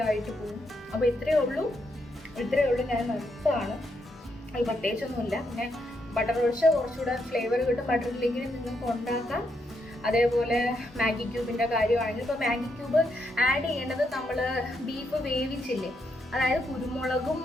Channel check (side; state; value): both; normal; correlation 0.79